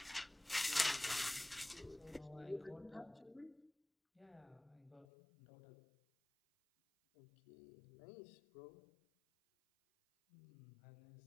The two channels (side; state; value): right; drops out; at 5.1 s